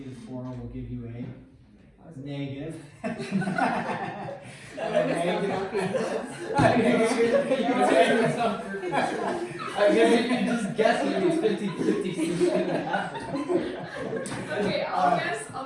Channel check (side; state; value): both; identical; correlation 1.00